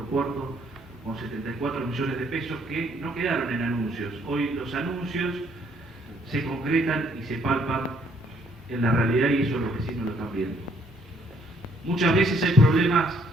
puerto, con 74 millones de pesos que no quedaron en anuncios. Hoy los anuncios se concretan y se palpan en la realidad, y eso los vecinos lo están viendo. Muchas veces hay problemas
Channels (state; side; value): normal; both; correlation 0.66